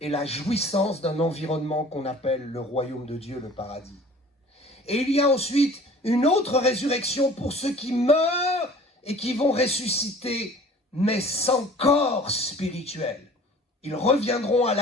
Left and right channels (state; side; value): normal; both; correlation 0.47